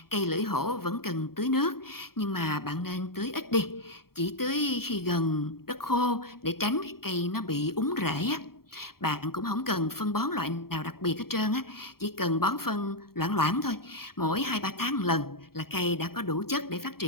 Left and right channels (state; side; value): late; right; 0.94 ms